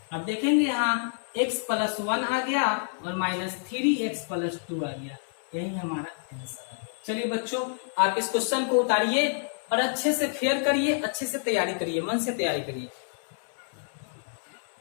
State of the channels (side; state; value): right; silent; 59 dB below the other